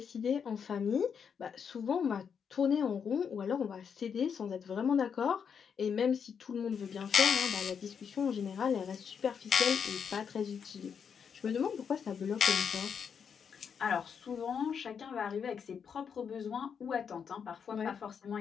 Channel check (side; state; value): right; quieter; 6.9 dB